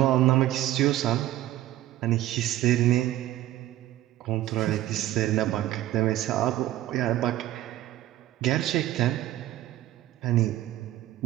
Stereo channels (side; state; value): left; quieter; 14.4 dB